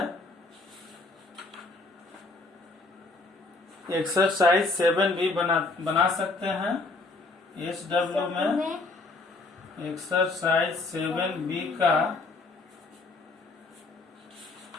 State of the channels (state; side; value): quieter; right; 3.4 dB